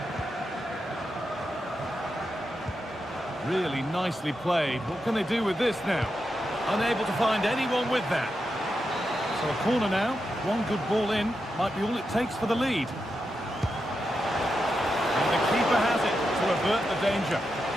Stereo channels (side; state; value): both; normal; correlation 0.87